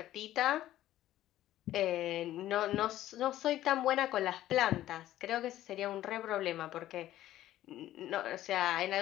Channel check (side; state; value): right; quieter; 13.7 dB